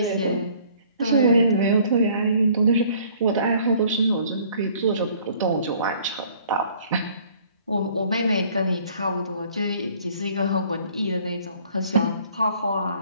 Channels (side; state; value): both; inverted; correlation -0.57